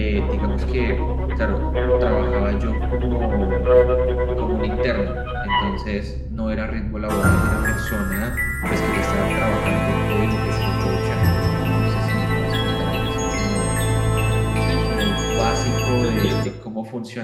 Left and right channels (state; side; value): identical; both; correlation 1.00